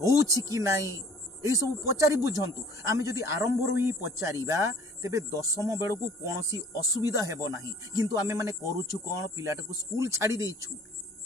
कि नहीं एई सब पचारि बुझंतु आमे जदि आरंभ रु ही पचारिबा तेबे 10वीं बेलू को कोनोसी असुविधा हेबो नाही किंतु आमे माने करूछु कोन पिलाटा को स्कूल छाड़ी देइछु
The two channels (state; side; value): normal; both; correlation 0.52